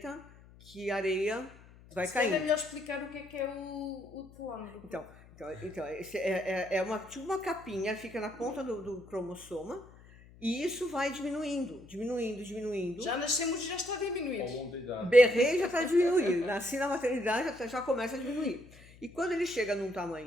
que a areia vai caindo. É melhor explicar o que é o telômero. Então é tipo uma capinha, fica na ponta do cromossoma, e isso vai diminuindo. Já nascemos e já está a diminuir. Ao longo da idade. Berrei já está a diminuir. Nasci na maternidade, já começa a diminuir. E quando ele chega num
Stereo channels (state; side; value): noise; left; hum, 22 dB below the sound